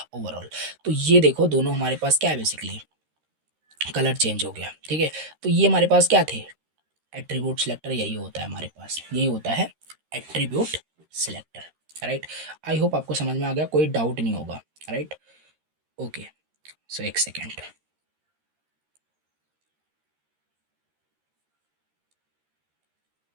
ओवरऑल। तो ये देखो दोनों हमारे पास क्या है, बेसिकली कलर चेंज हो गया। ठीक है, तो ये हमारे पास क्या थे, एट्रीब्यूट सिलेक्टर, यही होता है हमारे पास, यही होता है attribute selector right. I hope आपको समझ में आ गया, कोई डाउट नहीं होगा राइट। ओके, सो एक सेकेंड,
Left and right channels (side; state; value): left; late; 13 ms